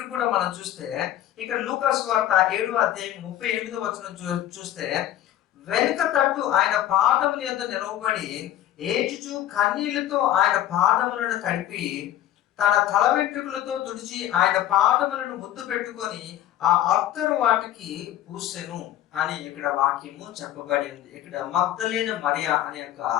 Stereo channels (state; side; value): quieter; right; 12.7 dB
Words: కూడా మనం చూస్తే, ఇక్కడ లూకా సువార్త 7వ అధ్యాయం 38వ వచనం చూస్తే, వెనుక తట్టు ఆయన పాదముల యొద్ద నిలవబడి ఏడ్చుచు కన్నీళ్లతో ఆయన పాదములను తడిపి తన తల వెంట్రుకలతో తుడిచి ఆయన పాదములను ముద్దు పెట్టుకొని ఆ అత్తరు వాటికి పూసెను అని ఇక్కడ వాక్యము చెప్పబడి ఉంది. ఇక్కడ మగ్దలేన మరియా అనే యొక్క